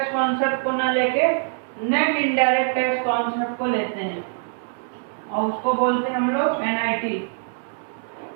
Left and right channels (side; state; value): left; silent; 63 dB below the other